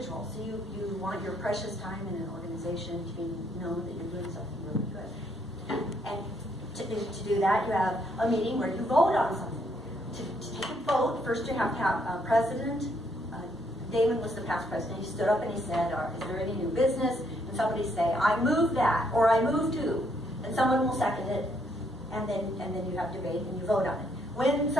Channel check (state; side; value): normal; both; correlation 0.71